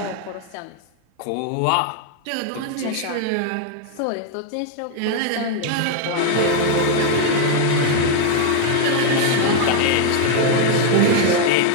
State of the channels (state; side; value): different; both; correlation 0.00